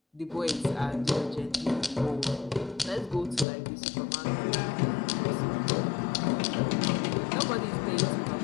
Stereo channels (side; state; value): right; drops out; at 3.5 s